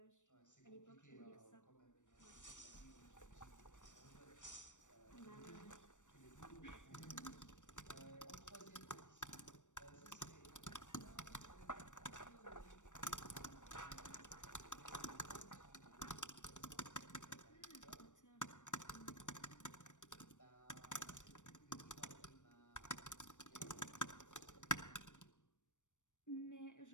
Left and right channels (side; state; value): right; late; 0.85 ms